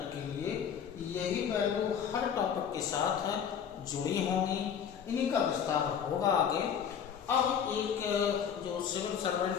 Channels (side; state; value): right; quieter; 7.9 dB